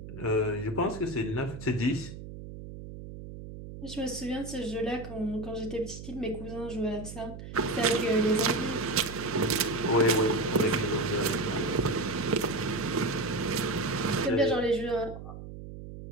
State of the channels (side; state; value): right; noise; hum, 12 dB below the sound